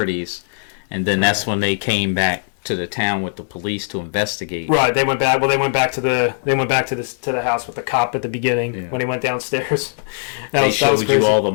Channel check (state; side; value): silent; right; 66 dB below the other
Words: and then that's when they came back to the town with the police to investigate. Right, they went back. Well, they went back to the house with the cop at the beginning when he went downstairs. They showed you all the